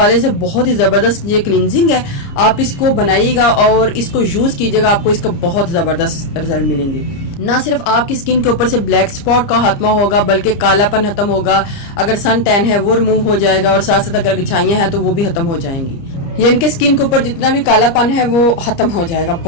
से बहुत ही जबरदस्त ये क्लींजिंग है। आप इसको बनाइएगा और इसको यूज कीजिएगा, आपको इसका बहुत जबरदस्त रिजल्ट मिलेंगे। ना सिर्फ आपकी स्किन के ऊपर से ब्लैक स्पॉट का खात्मा होगा बल्कि कालापन खत्म होगा, अगर सन टैन है वो रिमूव हो जाएगा और साथ साथ अगर घिछाइयां हैं तो वो भी खत्म हो जाएंगी। यानी कि स्किन के ऊपर जितना भी कालापन है वो खत्म हो जाएगा।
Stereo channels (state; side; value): late; right; 30 ms